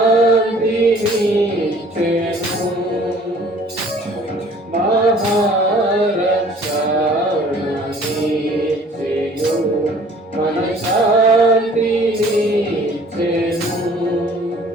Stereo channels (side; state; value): both; normal; correlation 0.53